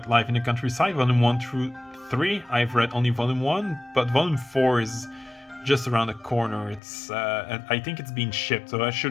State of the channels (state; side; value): drops out; right; at 6.8 s